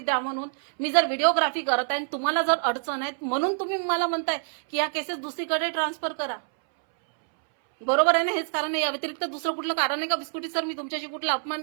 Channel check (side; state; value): left; silent; 61 dB below the other